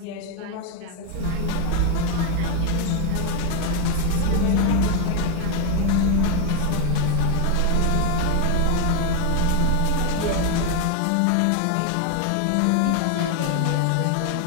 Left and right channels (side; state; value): both; different; correlation 0.01